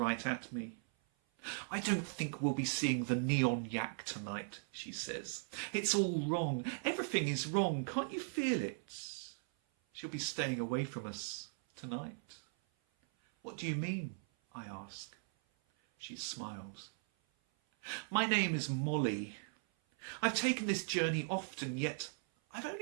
at me. I don't think we'll be seeing the Neon Yak tonight, she says. It's all wrong. Everything is wrong. Can't you feel it? She'll be staying away from us tonight. What do you mean? I ask. She smiles. My name is Molly. I've taken this journey often, yet I've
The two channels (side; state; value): left; silent; 52 dB below the other